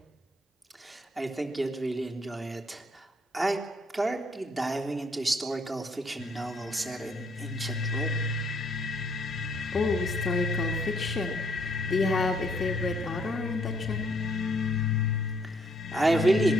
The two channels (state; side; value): normal; both; correlation 0.67